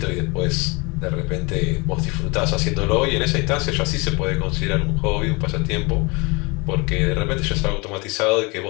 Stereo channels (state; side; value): quieter; right; 27.7 dB